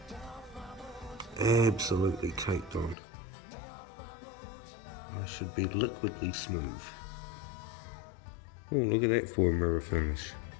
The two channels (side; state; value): right; drops out; at 3.0 s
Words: Absolutely caked on. I should be liquidly smooth. Oh, look at that for a mirror finish.